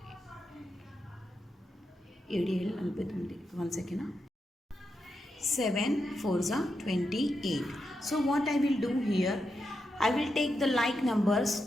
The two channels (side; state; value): both; normal; correlation 0.86